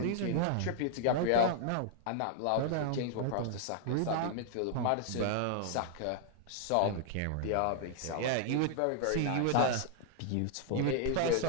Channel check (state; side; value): different; both; correlation -0.01